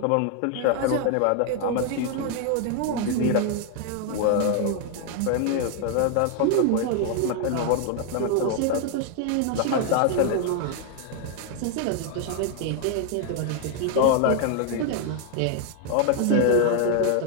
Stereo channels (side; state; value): both; different; correlation 0.00